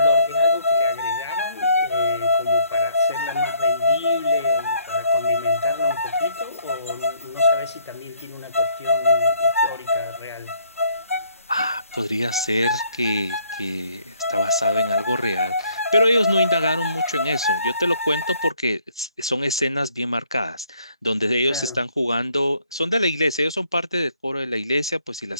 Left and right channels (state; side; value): inverted; both; correlation -0.66